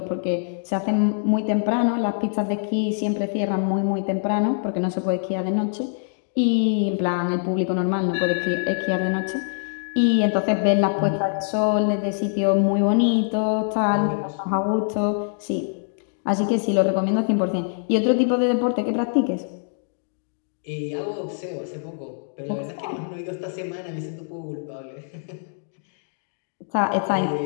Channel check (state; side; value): silent; right; digital silence